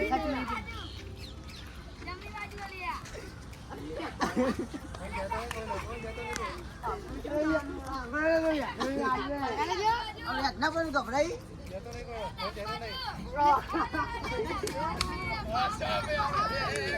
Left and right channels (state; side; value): identical; both; correlation 1.00